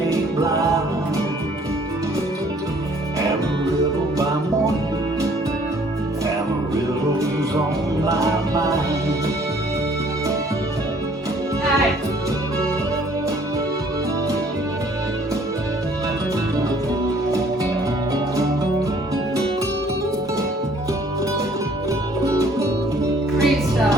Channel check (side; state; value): both; normal; correlation 0.58